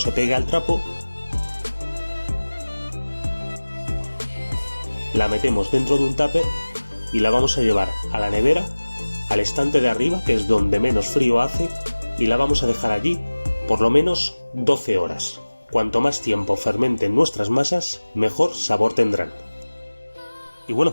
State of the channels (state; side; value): inverted; both; correlation -1.00